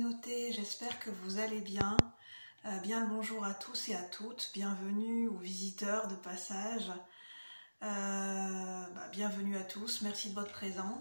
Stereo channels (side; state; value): both; inverted; correlation -1.00